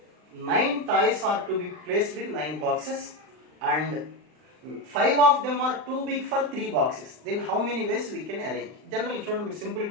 9 toys are to be placed in 9 boxes and 5 of them are too big for 3 boxes. Then how many ways we can arrange? Generally చూడండి, మీరు simple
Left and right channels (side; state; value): left; late; 39 ms